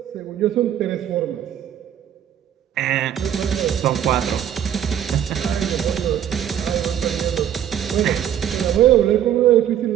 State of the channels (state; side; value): quieter; left; 10.3 dB